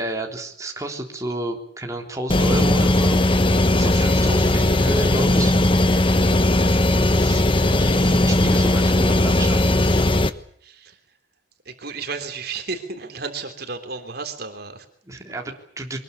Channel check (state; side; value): normal; both; correlation 0.74